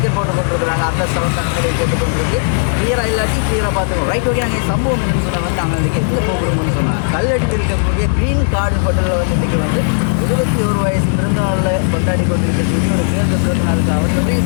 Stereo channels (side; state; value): right; silent; digital silence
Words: போட்டு கொண்டிருக்கிறாங்க. அந்த சவத்தானங்களை கேட்டுக்கொண்டிருக்கு. கிளியராக இல்லாட்டி கிளியராக பார்த்துக்கோம். ரைட் ஓகே, நாங்கள் சம்பவம் என்னன்னு சொன்னால் வந்து நாங்கள் இன்றைக்கி எங்கே போகிறோம்னு சொன்னால் கல்லடியில் இருக்கக்கூடிய க்ரீன் கார்டு ஹோட்டலில் வந்து இன்றைக்கி வந்து 21 வயசு பிறந்தநாளில் கொண்டாடி கொண்டிருக்கக்கூடிய ஒரு தேர்ந்த பிறந்த நாளுக்கு அவர் நிறைய